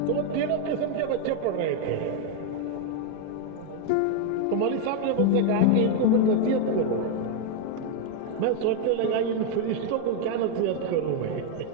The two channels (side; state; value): both; different; correlation 0.01